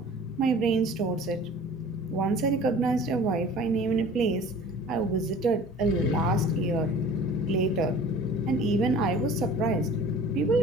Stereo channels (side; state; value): both; normal; correlation 0.45